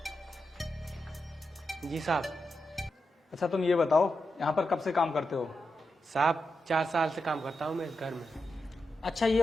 जी साहब। अच्छा तुम ये बताओ, यहाँ पर कब से काम करते हो? साहब 4 साल से काम करता हूँ मैं इस घर में। अच्छा ये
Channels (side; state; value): both; normal; correlation 0.87